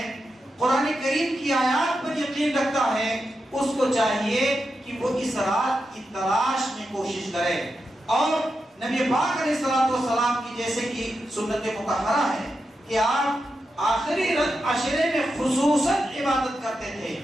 قرآن کریم کی آیات پر یقین رکھتا ہے، اس کو چاہیے کہ وہ اس رات کی تلاش میں کوشش کرے۔ اور نبی پاک علیہ الصلوۃ والسلام کی جیسے کہ سنت مطہرہ ہے کہ آپ آخری عشرے میں خصوصاً عبادت کرتے تھے،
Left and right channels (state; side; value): normal; both; correlation 0.88